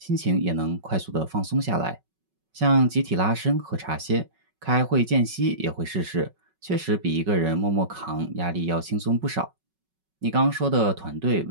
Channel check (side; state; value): left; late; 5.4 ms